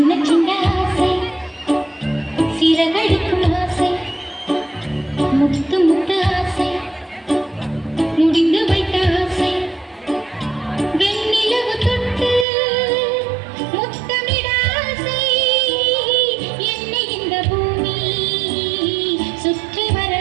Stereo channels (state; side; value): drops out; left; at 12.5 s